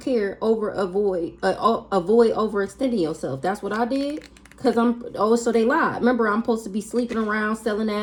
over avoid overextending yourself. That's what I did. Because so they lied. Remember, I'm supposed to be sleeping around, selling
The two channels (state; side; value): identical; both; correlation 1.00